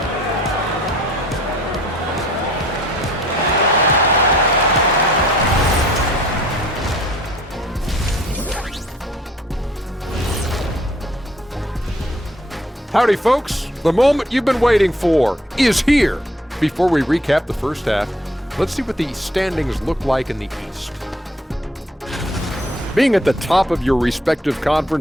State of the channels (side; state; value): both; normal; correlation 0.60